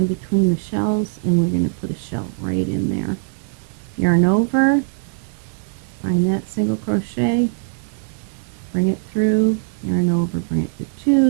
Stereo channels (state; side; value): silent; left; digital silence